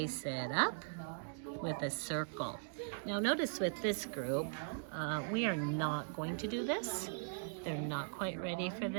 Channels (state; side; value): silent; left; digital silence